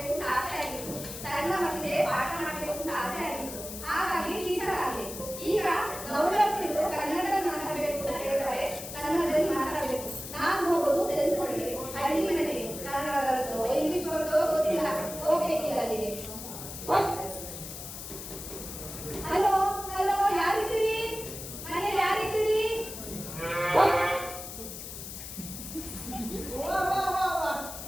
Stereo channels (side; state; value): left; noise; hiss, 10 dB below the sound